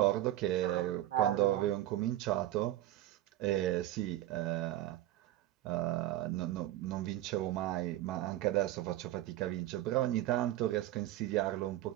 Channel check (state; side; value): quieter; left; 14.4 dB